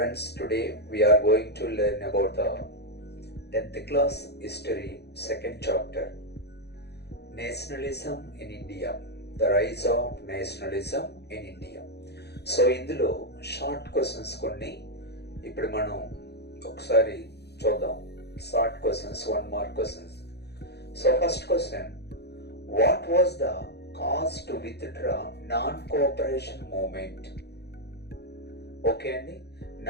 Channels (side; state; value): right; late; 0.48 ms